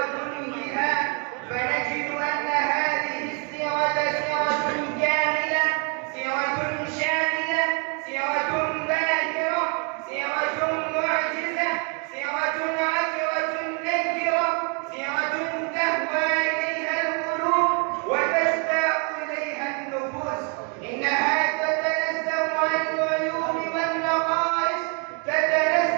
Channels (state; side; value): quieter; left; 37.0 dB